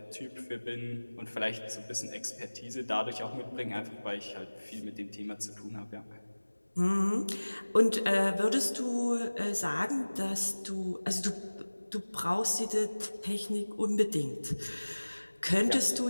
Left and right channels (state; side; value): inverted; both; correlation -1.00